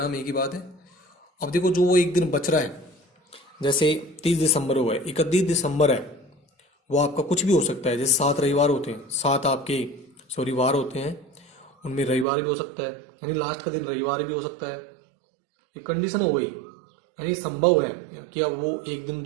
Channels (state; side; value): drops out; left; at 12.2 s